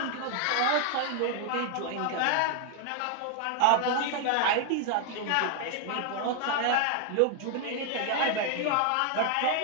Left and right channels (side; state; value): both; different; correlation 0.00